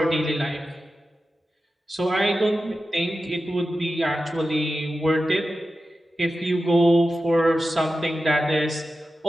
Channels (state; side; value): normal; both; correlation 0.93